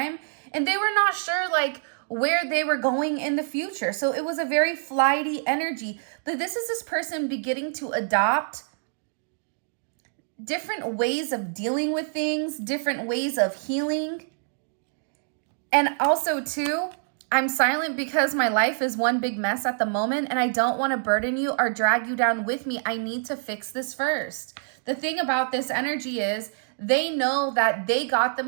and they were not sure like where they were going in the future. So it was a very flighty energy. But this is this person beginning to adopt different ways of dealing with things, different ways of healing. And also too, I'm silent because my life is one big mess at the moment, and I don't want to burden you or drag you down with me. I need to fix this first. The thing about this energy is they know that they got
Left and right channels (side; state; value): left; silent; digital silence